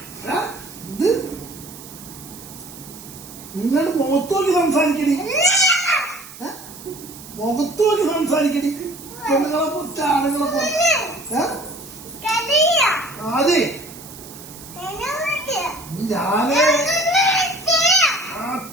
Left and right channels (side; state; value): right; noise; hiss, 16 dB below the sound